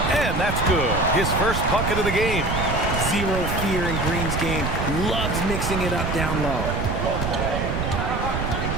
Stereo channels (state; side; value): noise; right; rumble, 2 dB below the sound